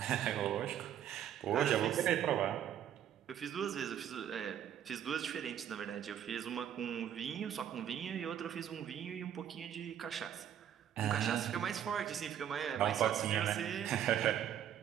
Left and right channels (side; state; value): left; quieter; 9.9 dB